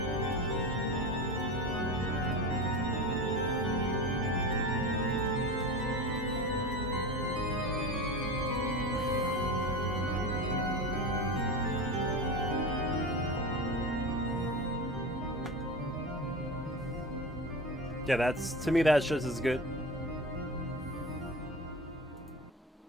Yeah, that's, to me, that's just as good.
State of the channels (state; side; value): normal; both; correlation 0.28